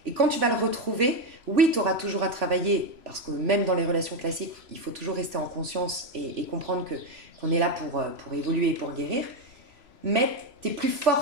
Et quand tu vas le retrouver, oui, tu auras toujours à travailler, parce que même dans les relations classiques, il faut toujours rester en conscience et comprendre qu'on est là pour évoluer et pour guérir, mais tu es plus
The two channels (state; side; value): late; left; 3.0 ms